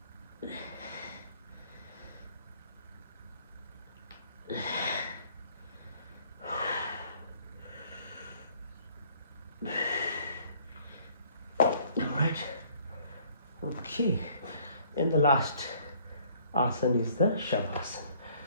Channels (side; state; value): both; inverted; correlation -0.60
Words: Okay, and the last asana is the